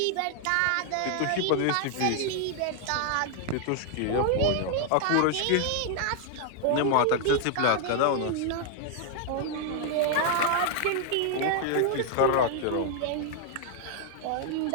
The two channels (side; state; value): both; different; correlation 0.00